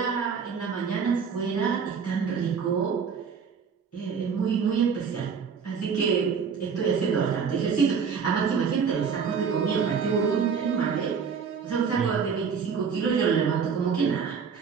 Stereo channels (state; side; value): quieter; left; 6.2 dB